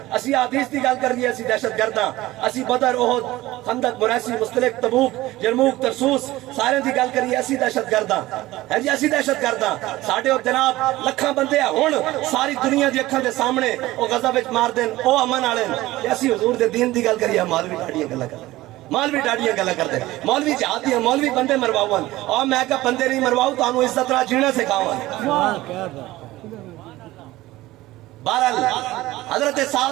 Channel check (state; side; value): quieter; left; 17.6 dB